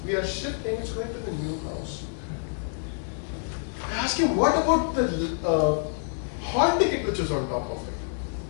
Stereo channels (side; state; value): right; silent; 60 dB below the other